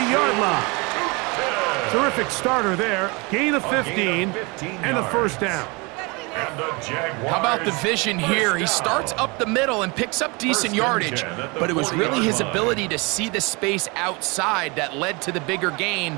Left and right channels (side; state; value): left; quieter; 27.7 dB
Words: line. Terrific starter there. Gain of 15 and a first down. And the Jaguars. How about the vision here? He starts up the middle and picks up decent yardage, but it was really his ability to see the space outside that led to the bigger gain